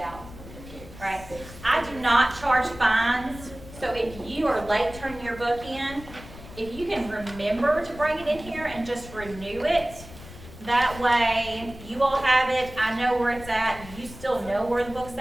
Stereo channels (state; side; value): noise; left; rumble, 16 dB below the sound